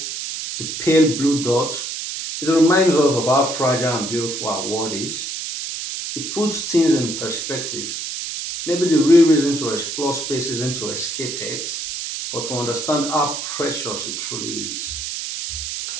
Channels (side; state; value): right; noise; hiss, 5 dB below the sound